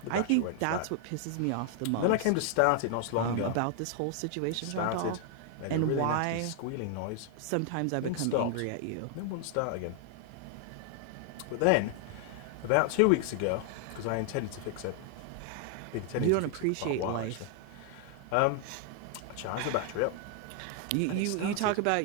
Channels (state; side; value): different; both; correlation 0.00